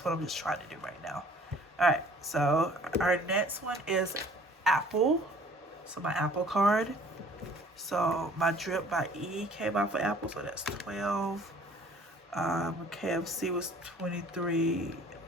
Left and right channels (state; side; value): normal; both; correlation 0.53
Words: what I'm just trying to do right now. All right, so our next one is Apple. So my Apple card. So my Drip by E came out for Apple, so that's 12. KFC was 23.